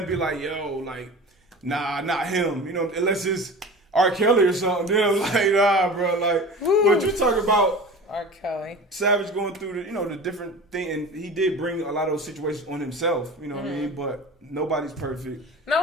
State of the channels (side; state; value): both; normal; correlation 0.35